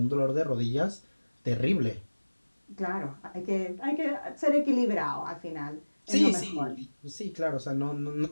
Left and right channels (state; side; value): inverted; both; correlation -1.00